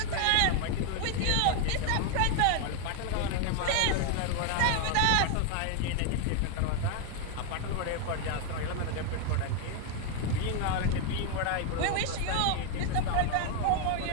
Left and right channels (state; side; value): different; both; correlation 0.01